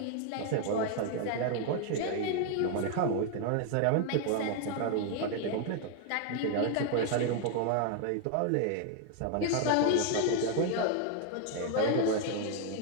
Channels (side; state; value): both; different; correlation 0.01